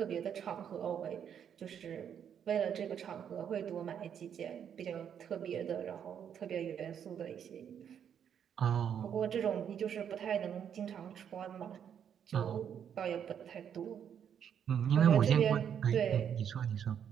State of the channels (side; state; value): left; quieter; 8.5 dB